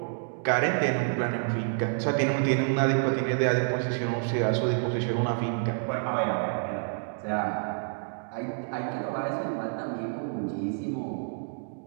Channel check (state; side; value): silent; left; 59 dB below the other